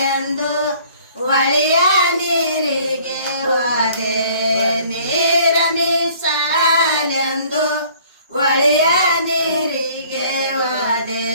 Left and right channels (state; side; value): inverted; both; correlation -0.55